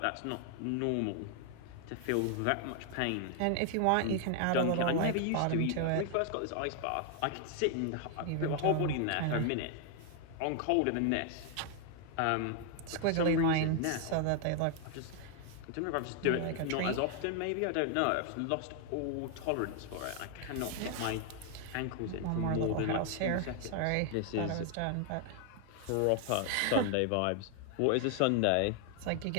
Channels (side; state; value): both; different; correlation 0.00